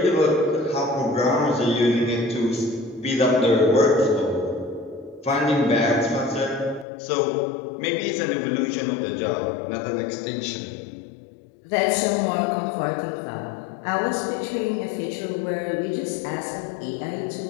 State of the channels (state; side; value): drops out; right; at 6.9 s